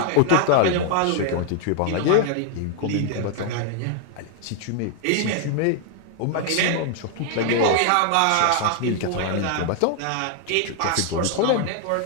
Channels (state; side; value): different; both; correlation 0.00